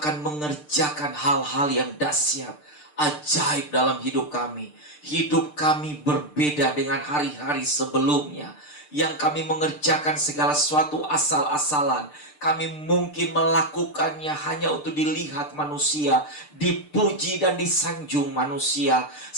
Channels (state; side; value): late; right; 6.7 ms